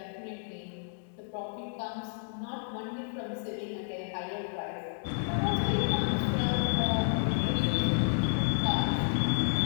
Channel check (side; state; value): right; silent; digital silence